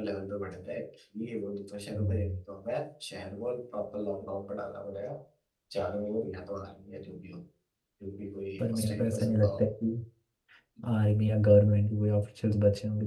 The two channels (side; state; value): both; identical; correlation 1.00